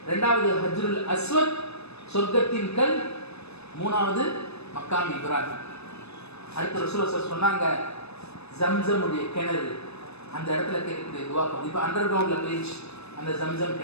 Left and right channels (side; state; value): right; late; 0.79 ms